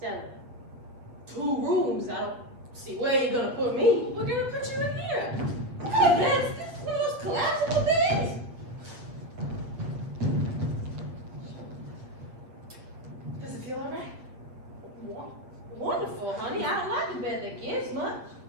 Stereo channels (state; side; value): late; left; 8.0 ms